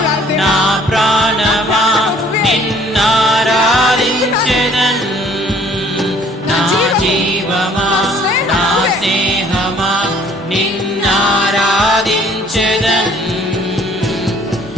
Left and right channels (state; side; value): normal; both; correlation 0.57